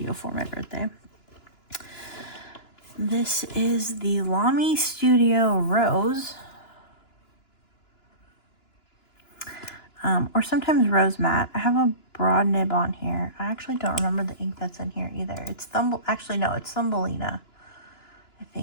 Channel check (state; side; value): late; right; 2.9 ms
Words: for my birthday. This is the Lamy Studio Rose. Or sometimes Rose Matte. I have a broad nib on here. I actually don't remember the ink that's in here either. It's actually no, it's Thumbelina. I